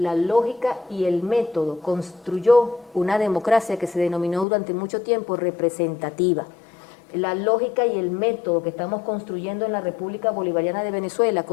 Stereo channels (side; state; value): right; drops out; at 4.5 s